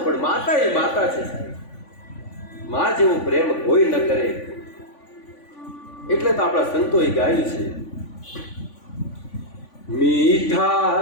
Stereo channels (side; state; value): right; late; 3.5 ms